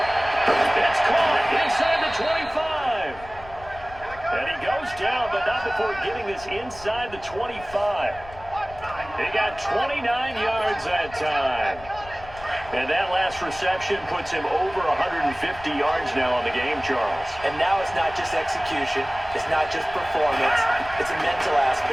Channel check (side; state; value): left; noise; rumble, 18 dB below the sound